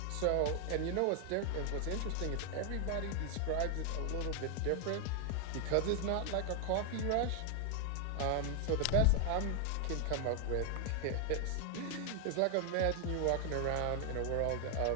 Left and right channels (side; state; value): both; different; correlation 0.00